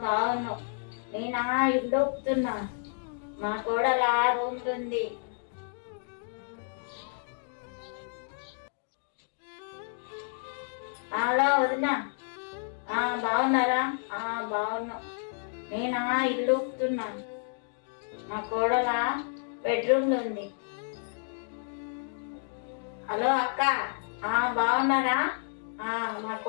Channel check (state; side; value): silent; right; digital silence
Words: బాగున్నావు. నేనా ఇల్లు ఒప్పుతున్నా, మా కోడల రూమ్ ఉంది. హలో వదినా, బాగున్నారా? బాగున్నావు. నేనా ఇల్లు ఒప్పుతున్నా, మా కోడల బెడ్రూమ్ లో ఉంది. హలో అక్క, బాగున్నారా? మా